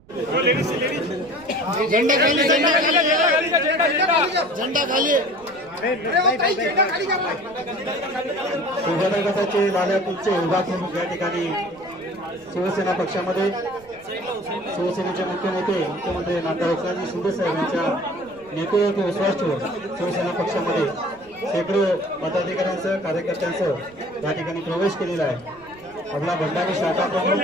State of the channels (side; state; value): right; noise; rumble, 26 dB below the sound